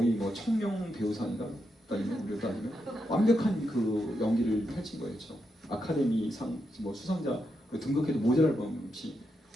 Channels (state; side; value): normal; both; correlation 0.84